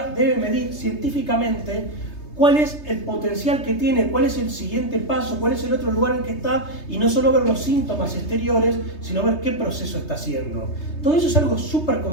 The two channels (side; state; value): right; late; 3.3 ms